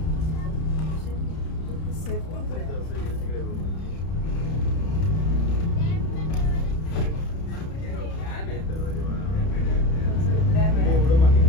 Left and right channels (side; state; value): right; late; 31 ms